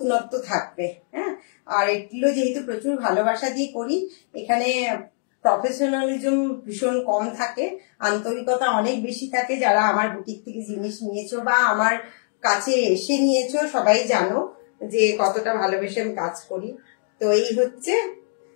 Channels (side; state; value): right; silent; digital silence